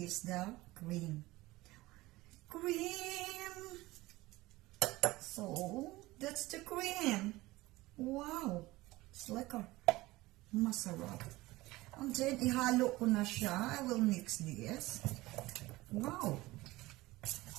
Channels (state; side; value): quieter; left; 19.3 dB